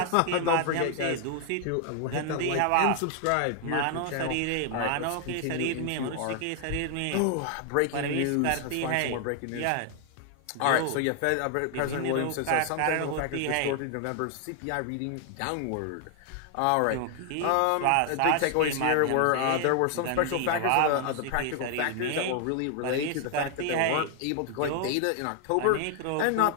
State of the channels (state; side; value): different; both; correlation 0.00